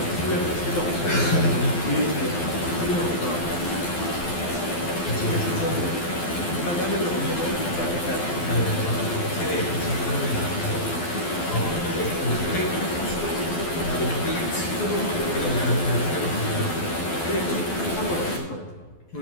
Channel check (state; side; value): late; right; 12 ms